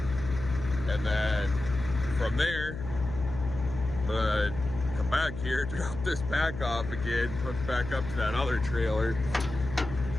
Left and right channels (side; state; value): left; noise; hum, 8 dB below the sound